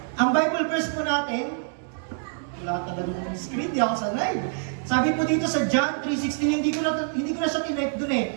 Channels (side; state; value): left; silent; digital silence